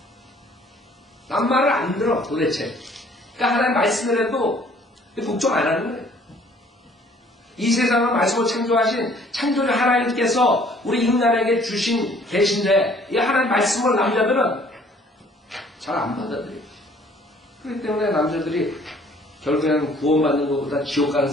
남 말을 안 들어 도대체. 그러니까 하나님 말씀을 해도 복종 안 하는 거예요. 이 세상을 말씀으로 창조하신 창조주 하나님께서 우리 인간에게 주신 계신데 이 하나님 말씀을 남자들은 잘 안 받아들여요. 그렇기 때문에 남자들이 결국에는 구원받는 것보다 지옥 가는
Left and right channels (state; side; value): normal; both; correlation 0.57